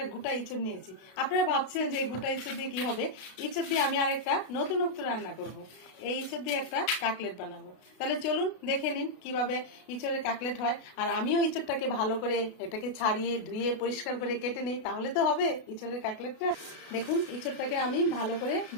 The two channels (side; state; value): right; late; 33 ms